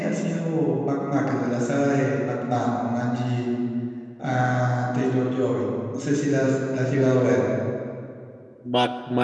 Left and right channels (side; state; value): both; identical; correlation 1.00